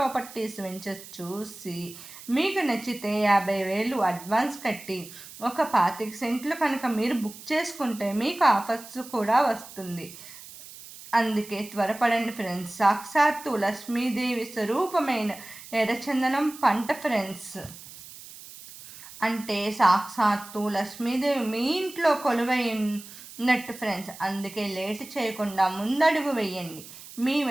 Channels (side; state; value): right; noise; hiss, 16 dB below the sound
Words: వెంచర్ చూసి మీకు నచ్చితే 50,000 అడ్వాన్స్ కట్టి ఒక 25 సెంట్లు కనుక మీరు బుక్ చేసుకుంటే మీకు ఆఫర్స్ కూడా వస్తుంది. అందుకే త్వరపడండి ఫ్రెండ్స్. సాక్షాత్తు లక్ష్మీదేవి స్వరూపమైన ఎర్రచందనం పంట ఫ్రెండ్స్. అంటే సాక్షాత్తు లక్ష్మీదేవి మీ ఇంట్లో కొలువైనట్టు ఫ్రెండ్స్. అందుకే లేట్ చేయకుండా ముందడుగు వేయండి. మీ